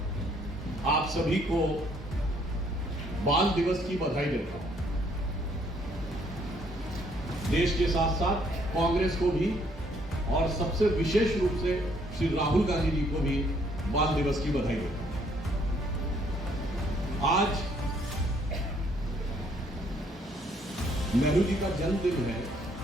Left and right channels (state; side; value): normal; both; correlation 0.66